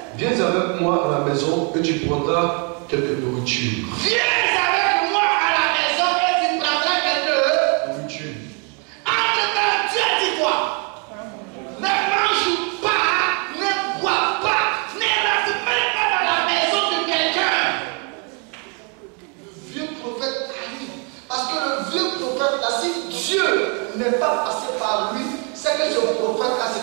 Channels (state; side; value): quieter; left; 35.7 dB